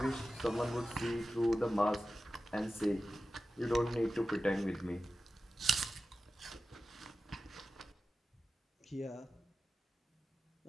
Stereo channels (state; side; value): normal; both; correlation 0.93